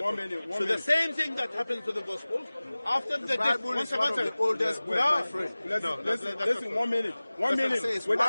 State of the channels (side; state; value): both; inverted; correlation -0.99